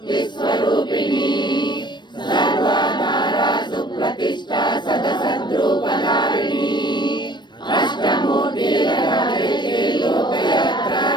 स्वरूपिणी सर्वाधारा सुप्रतिष्ठा सदसद्रूपधारिणी अष्टमूर्तिरहरे लोकयात्रा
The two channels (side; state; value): right; late; 0.22 ms